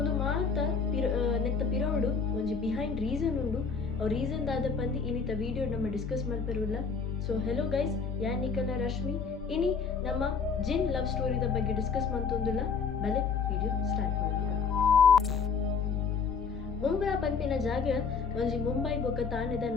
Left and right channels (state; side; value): quieter; right; 5.5 dB